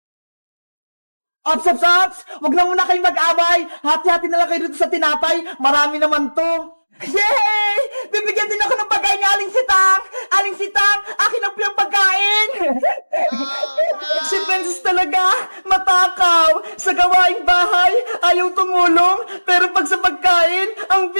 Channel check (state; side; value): inverted; both; correlation -1.00